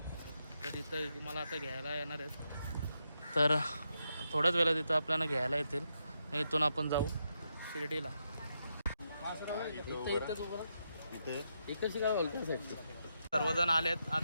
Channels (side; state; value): both; inverted; correlation -0.83